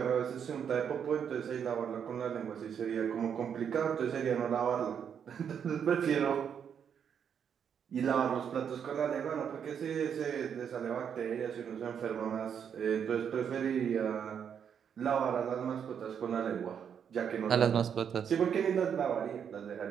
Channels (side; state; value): left; quieter; 7.9 dB